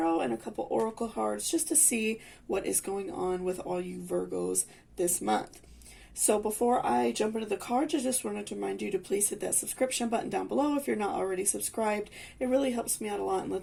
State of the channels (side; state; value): both; identical; correlation 1.00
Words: and a couple oracle cards just to see what is going on with all you Virgos this month. So before I jump into the cards, I just wanted to remind you to please hit that subscription button down below if you're not already subscribed. It really helps me out a lot and